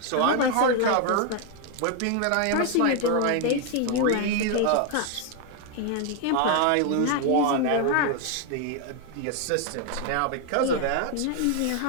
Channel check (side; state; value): both; different; correlation 0.01